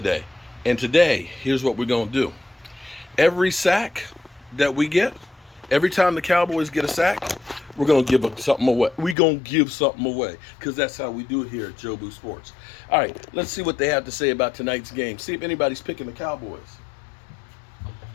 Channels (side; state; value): right; drops out; at 9.2 s